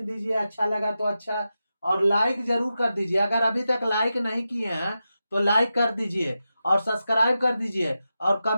दीजिए अच्छा लगा तो अच्छा, और लाइक जरूर कर दीजिए। अगर अभी तक लाइक नहीं किए हैं तो लाइक कर दीजिए और सब्सक्राइब कर दीजिए, और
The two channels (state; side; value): inverted; both; correlation -0.90